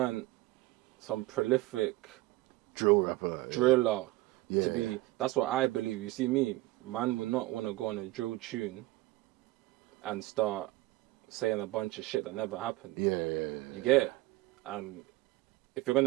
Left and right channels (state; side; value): quieter; left; 18.9 dB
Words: some prolific drill rapper, driller. To be, that's what I believe. You see me, man would not want to go on a drill tune and start saying a bunch of shit that never happened. Yeah. You get it? And if you're